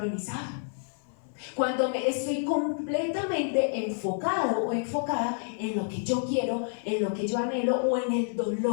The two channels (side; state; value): right; silent; 56 dB below the other